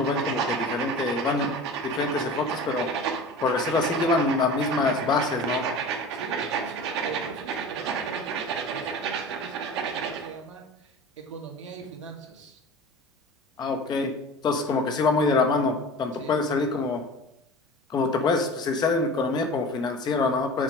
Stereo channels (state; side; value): normal; both; correlation 0.36